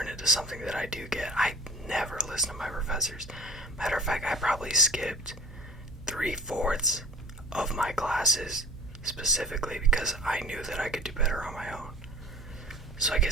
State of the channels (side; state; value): both; normal; correlation 0.43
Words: it into something that I do get. I never listen to my professors. Matter of fact, I probably skipped 3/4 of my classes specifically because I knew that I could do better on my own. So I